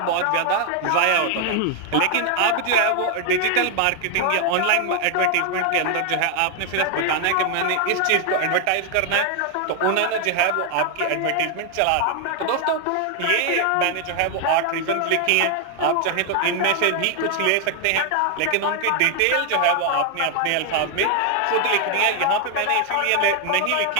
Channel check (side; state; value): both; different; correlation 0.00